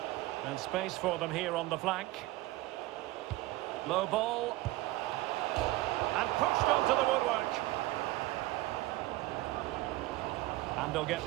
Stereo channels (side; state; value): left; quieter; 18.4 dB